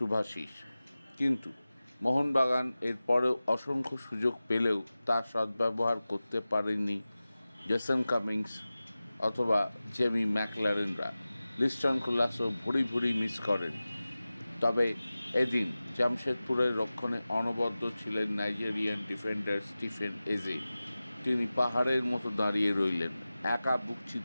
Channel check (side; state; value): both; inverted; correlation -0.97